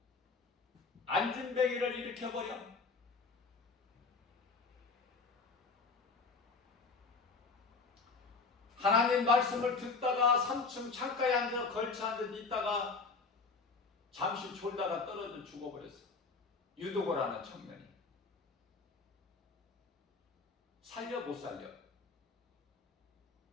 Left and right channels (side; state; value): right; quieter; 4.4 dB